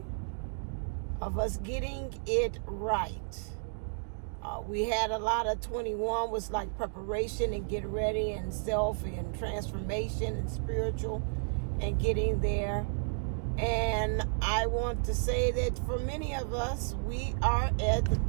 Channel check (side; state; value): left; silent; digital silence